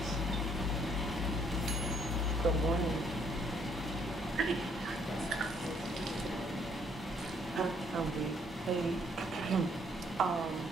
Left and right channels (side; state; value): both; normal; correlation 0.66